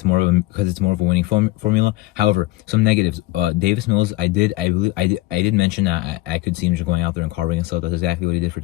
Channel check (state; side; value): quieter; right; 18.7 dB